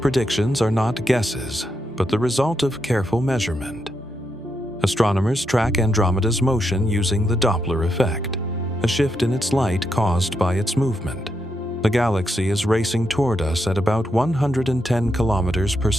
are not guesses, but the result of careful measurement. Astronomers track Andromeda's motion using the Doppler effect, a shift in its light caused by its movement. The galaxy is racing toward us at about 110 kilometers per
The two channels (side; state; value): both; normal; correlation 0.82